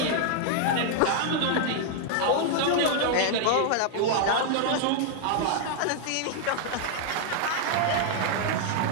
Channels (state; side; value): different; both; correlation -0.01